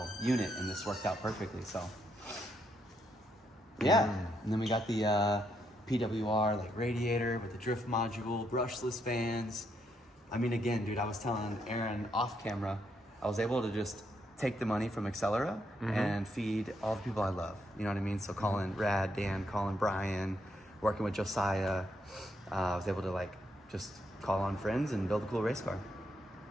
unit and this worked out perfectly, so. Yeah. And then we got the PWR like radiator with the drift module, brushless fans. I mean, again, dude, I was telling Aaron off camera, I was able to just take the money from Accelera and feed all the people I love. You know what I mean? So calling Rad, Dan, calling Brian, working with Josiah. I was able to like just call on friends and build a cool race car.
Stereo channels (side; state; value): both; normal; correlation 0.77